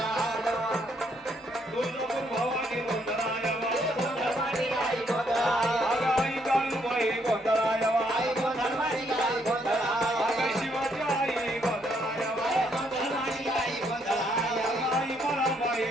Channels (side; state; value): both; normal; correlation 0.72